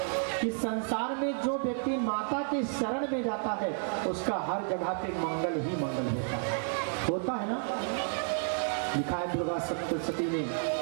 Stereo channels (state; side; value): silent; left; 57 dB below the other